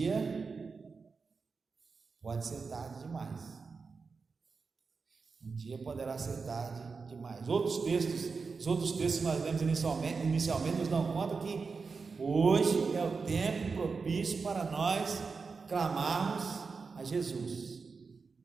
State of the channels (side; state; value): left; quieter; 4.8 dB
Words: pode ser tarde demais. Um dia poderá ser tarde demais. Os outros textos que nós lemos inicialmente nos dão conta que hoje é o tempo propício para nós clamarmos a Jesus.